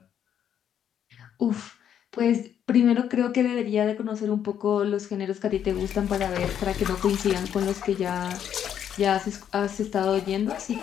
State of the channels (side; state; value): right; quieter; 9.3 dB